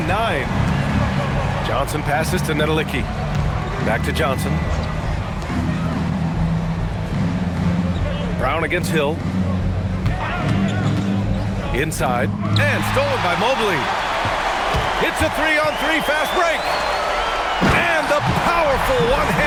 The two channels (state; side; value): identical; both; correlation 1.00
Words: Johnson passes to Nedelicki. Back to Johnson. Brown against Hill. Inside, and stolen by Mobley. It's a 3-on-3 fast break. And the powerful